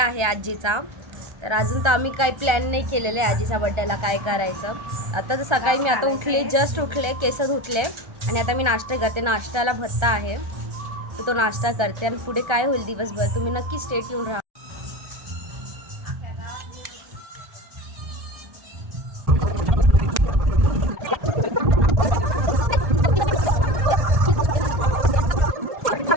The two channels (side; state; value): left; late; 1.3 ms